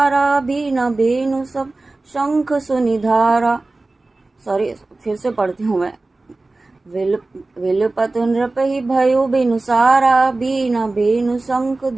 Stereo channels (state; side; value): quieter; left; 3.2 dB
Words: बीना बेनु सब शंख सुनिधारा। सॉरी, फिर से पढ़ती हूँ मैं। विलुपतु नृपहि भयो बिनु सारा, बीना बेनु शंख